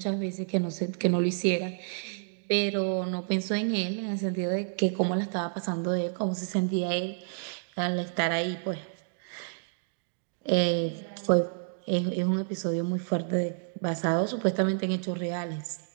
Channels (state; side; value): silent; left; digital silence